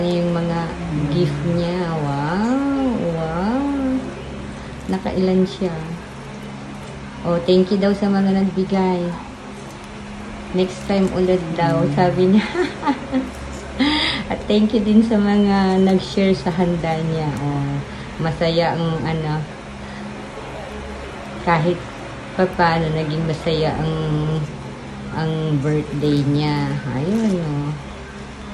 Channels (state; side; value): identical; both; correlation 1.00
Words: na yung mga gift niya. Wow! Wow! Nakailan siya. Oh, thank you daw sa mga nagbigay. Next time ulit daw, sabi niya. At thank you din sa mga nag-share sa handa niya. Masaya ang ano, kahit paano naging masaya ang birthday niya. Ayun,